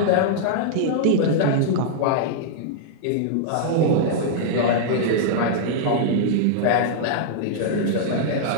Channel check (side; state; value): both; different; correlation -0.02